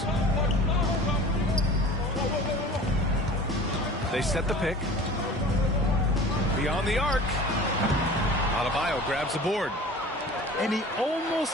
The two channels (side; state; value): both; normal; correlation 0.41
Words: They set the pick. Beyond the arc. Adebayo grabs the board. And he